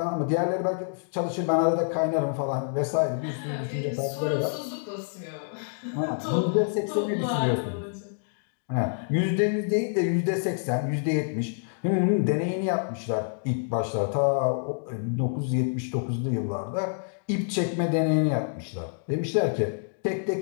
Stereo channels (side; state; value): right; silent; digital silence